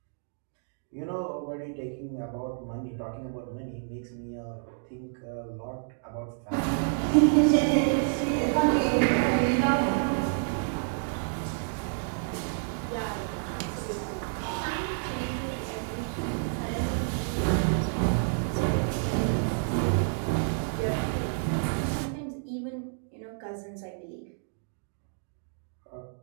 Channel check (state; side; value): silent; left; digital silence